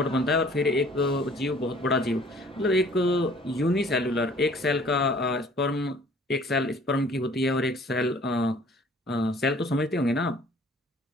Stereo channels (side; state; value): both; normal; correlation 0.54